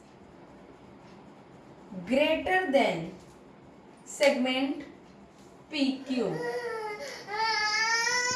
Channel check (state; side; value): identical; both; correlation 1.00